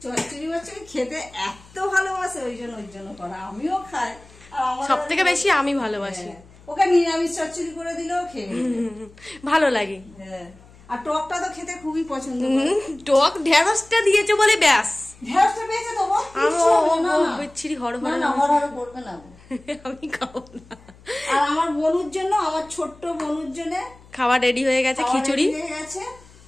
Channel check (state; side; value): noise; left; hum, 24 dB below the sound